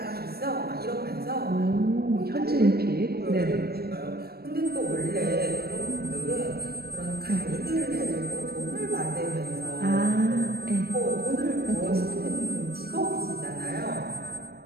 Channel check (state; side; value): late; left; 0.46 ms